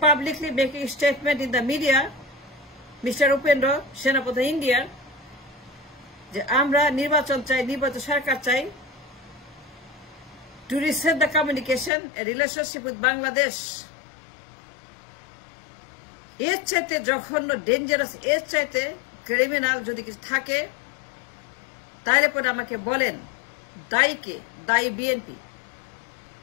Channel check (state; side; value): drops out; right; at 11.9 s